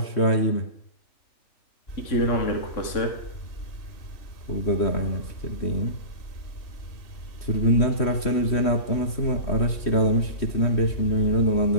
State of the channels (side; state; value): right; late; 3.1 ms